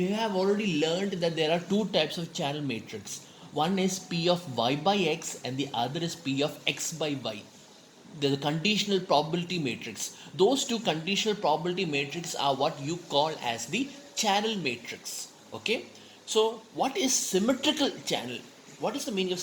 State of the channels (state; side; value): identical; both; correlation 1.00